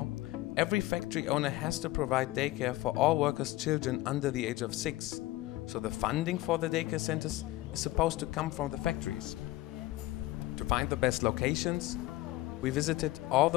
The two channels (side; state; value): right; quieter; 17.8 dB